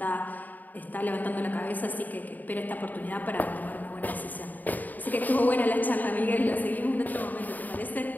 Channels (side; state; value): right; late; 0.084 ms